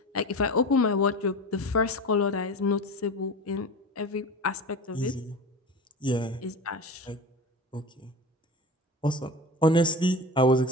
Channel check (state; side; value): normal; both; correlation 0.30